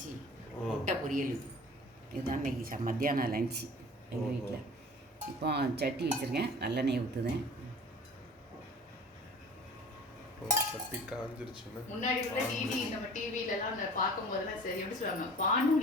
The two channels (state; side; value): normal; both; correlation 0.44